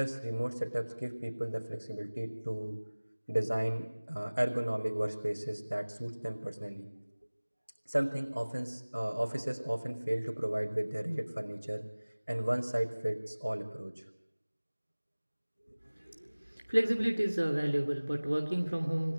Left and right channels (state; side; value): inverted; both; correlation -1.00